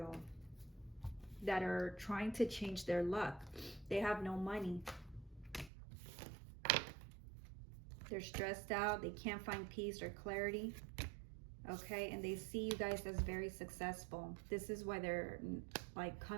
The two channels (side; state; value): left; drops out; at 5.7 s